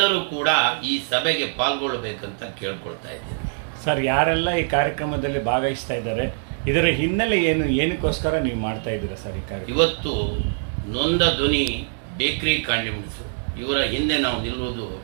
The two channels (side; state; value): left; silent; digital silence